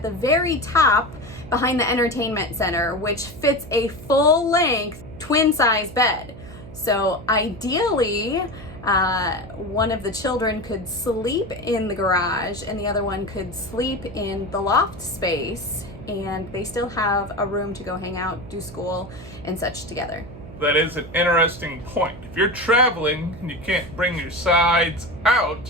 the very top behind the entertainment center, which fits a full length twin size bed. So ideally, one of the children could sleep in the garage and the other one could sleep in the loft space, and they still have a room to go hang out, do school and such together. That is an interesting point. If you're traveling and you can't bring your sides out,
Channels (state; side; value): noise; right; hum, 15 dB below the sound